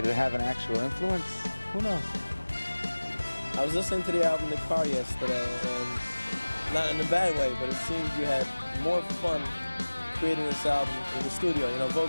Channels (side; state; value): both; inverted; correlation -1.00